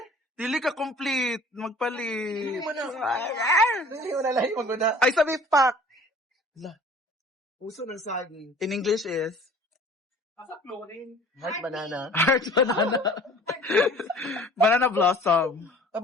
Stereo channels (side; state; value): both; normal; correlation 0.48